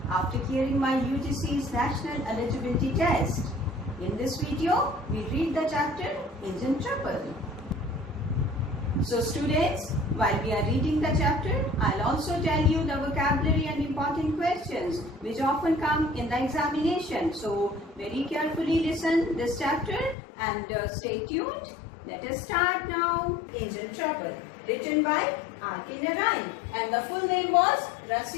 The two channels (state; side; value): drops out; right; at 20.2 s